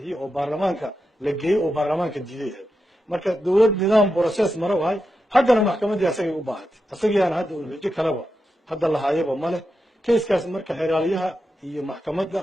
oo baarlamaanka la geeyay oo baarlamaanka diiday marka dowlad nidaam process maro wahay haddana maxkamadda asagay u baahatay asagiyana hadda uu xujo kalaba hadda la haayaba male كيسكاس مركا حراليها هي محكمة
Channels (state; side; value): normal; both; correlation 0.88